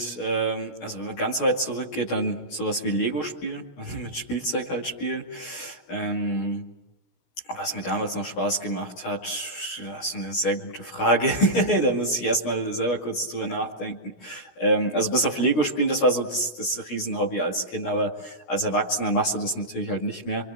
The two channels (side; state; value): right; late; 16 ms